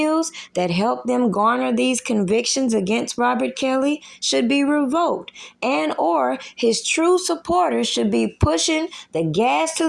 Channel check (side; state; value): both; identical; correlation 1.00